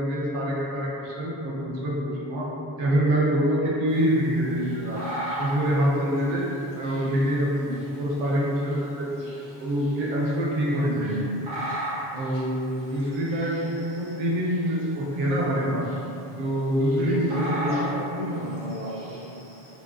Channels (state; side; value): late; left; 7.2 ms